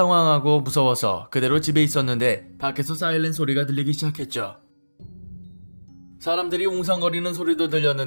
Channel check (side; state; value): both; inverted; correlation -1.00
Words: 무서워서 그대로 집에 있었는데 밖에서 사이렌 소리가 들리기 시작했죠. 사람들이 웅성거리는 소리도